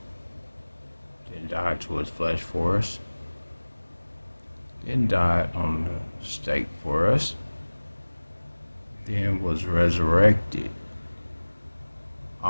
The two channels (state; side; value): inverted; both; correlation -1.00